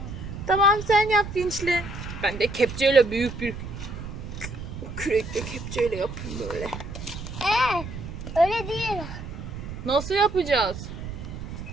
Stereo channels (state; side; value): noise; right; rumble, 9 dB below the sound